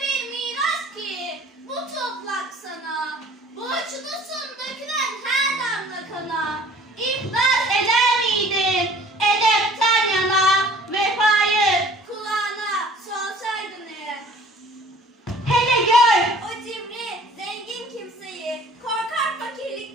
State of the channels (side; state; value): both; normal; correlation 0.51